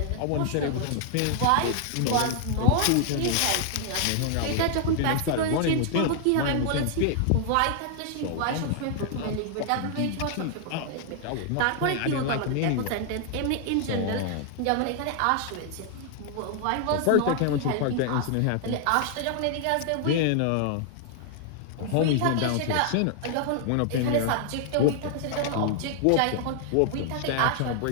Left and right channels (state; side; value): different; both; correlation 0.00